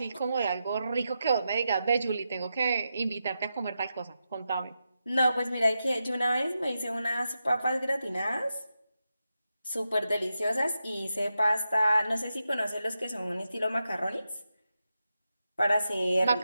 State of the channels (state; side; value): inverted; both; correlation -0.88